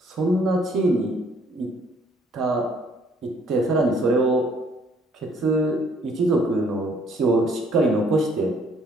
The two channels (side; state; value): both; normal; correlation 0.63